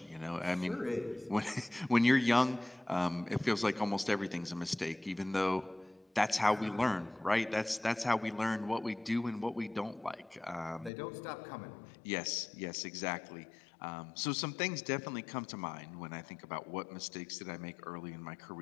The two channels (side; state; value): right; drops out; at 10.9 s